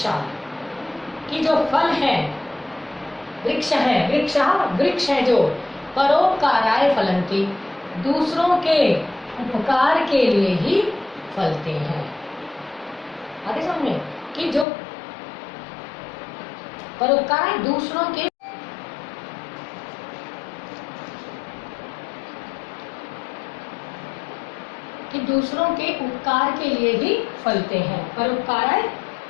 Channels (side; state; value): right; drops out; at 14.7 s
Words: कि जो फल है, वृक्ष है, वृक्ष है जो परोपकाराय फलन्ति, दूसरों के उपकार के लिए ही फलते हैं। आगे समझे कि जो परोपकार दूसरों के, कि दूसरों के उपकार के लिए ही फलते हैं। परोपकाराय,